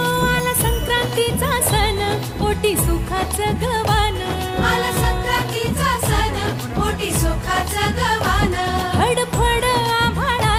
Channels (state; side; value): identical; both; correlation 1.00